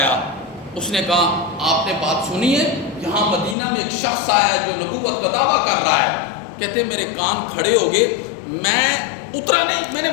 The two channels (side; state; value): right; drops out; at 3.6 s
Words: اس نے کہا آپ نے بات سنی ہے؟ یہاں مدینہ میں ایک شخص آیا ہے جو نبوت کا دعویٰ کر رہا ہے. کہتے ہیں میرے کان کھڑے ہو گئے. میں اترا نہیں، میں نے